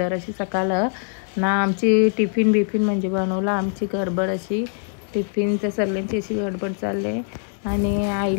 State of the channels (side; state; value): right; silent; 64 dB below the other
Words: अशी सकाळ ना। आमची टिफिन बिफिन म्हणजे बनवला, आमची गडबड अशी टिफिनच्या सर्वांची अशी गडबड चालले। आणि